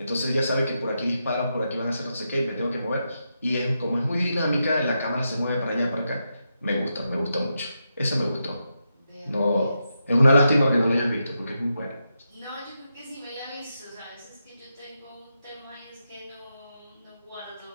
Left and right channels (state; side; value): inverted; both; correlation -0.85